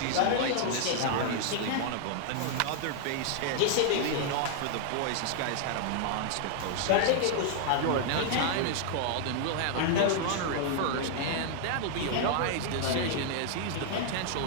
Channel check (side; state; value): both; different; correlation 0.00